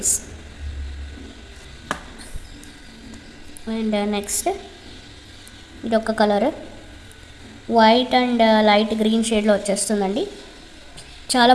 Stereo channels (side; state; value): both; identical; correlation 1.00